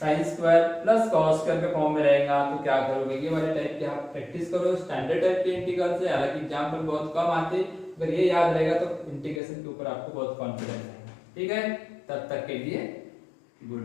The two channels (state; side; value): drops out; right; at 9.4 s